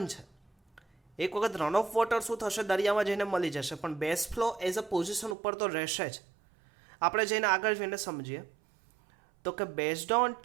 છે. એક વખત રન ઓફ વોટર શું થશે? દરિયામાં જઈને મળી જશે. પણ base flow as a position ઉપર તો રહેશે જ. આપણે જઈને આગળ જઈને સમજીએ તો કે based on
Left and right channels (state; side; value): drops out; left; at 5.4 s